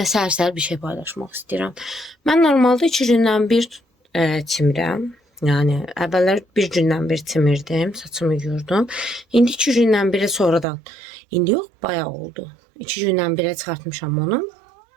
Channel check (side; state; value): left; drops out; at 10.7 s